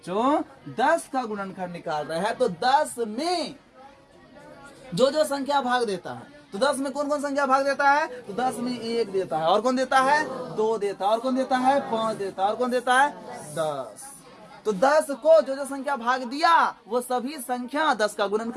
10 का गुणनखंड निकाल रहे हैं, तो 10 में जो जो संख्या भाग देता है, तो 10 में कौन कौन संख्या भाग देता है? तो 10 में 1 देता है, और कौन देता है? 2 देता है, और कौन देता है? 5 देता है, और कौन देता है? 10। तो 10 को जो जो संख्या भाग दिया वो सभी संख्या 10 का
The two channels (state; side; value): identical; both; correlation 1.00